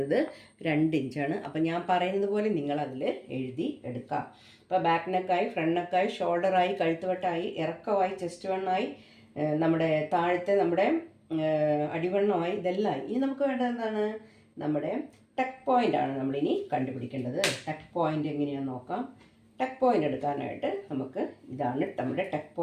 2 ഇഞ്ചാണ്. അപ്പോൾ ഞാൻ പറയുന്നത് പോലെ നിങ്ങളതിൽ എഴുതി എടുക്കാം. അപ്പോൾ ബാക്ക് നെക്കായി, ഫ്രണ്ട് നെക്കായി, ഷോൾഡറായി, കഴുത്ത് വട്ടമായി, ഇറക്കമായി, ചെസ്റ്റ് വണ്ണായി, നമ്മുടെ താഴത്തെ നമ്മുടെ അടിവണ്ണമായി, ഇതെല്ലാം. ഇനി നമുക്ക് വേണ്ടത് എന്താണ്? നമ്മുടെ ടക്ക് പോയിൻ്റ് ആണ് നമ്മളിനി കണ്ടുപിടിക്കേണ്ടത്. ടക്ക് പോയിൻ്റ് എങ്ങനെയാണെന്ന് നോക്കാം. ടക്ക് പോയിൻ്റ് എടുക്കാനായിട്ട് നമുക്ക് ഇതാണ് നമ്മുടെ ടക്ക്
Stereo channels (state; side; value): identical; both; correlation 1.00